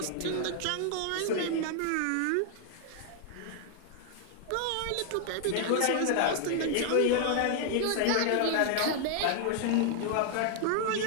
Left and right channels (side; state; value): both; different; correlation 0.00